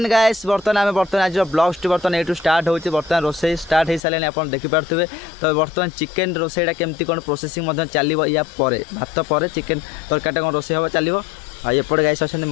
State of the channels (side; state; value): right; drops out; at 4.0 s